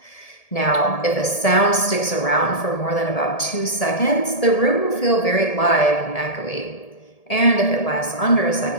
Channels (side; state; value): right; late; 1.7 ms